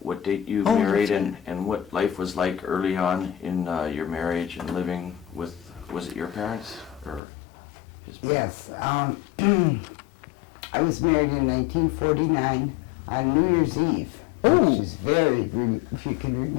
What date you Oh, married that's and what life was like early on in your marriage and living with, was it your parents or his parents? Yes. I was married in 1949 on New Year's Eve, which is if you can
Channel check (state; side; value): drops out; right; at 7.2 s